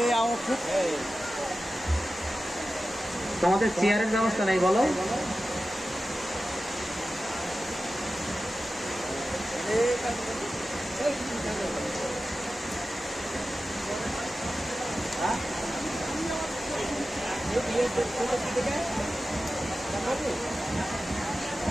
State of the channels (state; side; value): normal; both; correlation 0.94